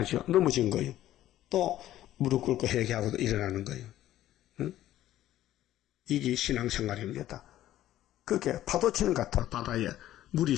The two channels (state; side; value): quieter; right; 13.5 dB